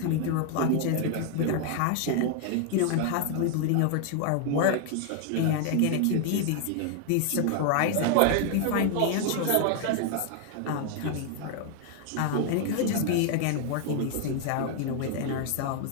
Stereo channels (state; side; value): different; both; correlation 0.00